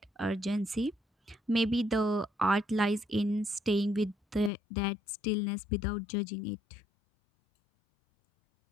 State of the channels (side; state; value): right; drops out; at 4.5 s